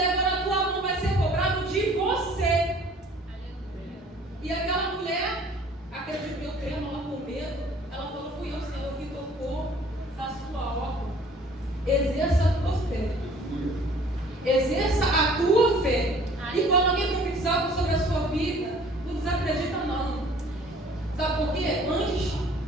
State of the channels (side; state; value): both; normal; correlation 0.53